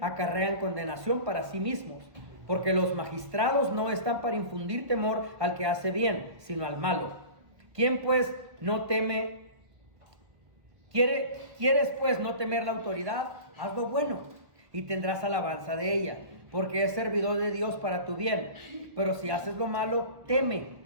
condenación para sí mismos, porque los magistrados no están para infundir temor al que hace bien, sino al malo. ¿Quién pues no teme? ¿Quieres pues no temer la autoridad? Haz lo bueno y tendrás alabanza de ella, porque es servidor de Dios para tu bien. Pero si haces lo malo, teme,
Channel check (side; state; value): left; late; 1.3 ms